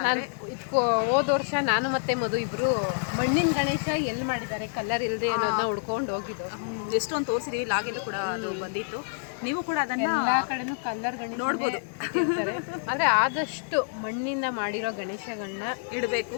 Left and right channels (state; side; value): silent; right; 60 dB below the other